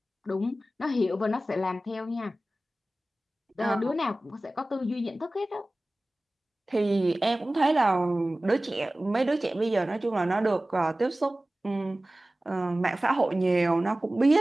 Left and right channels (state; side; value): normal; both; correlation 0.97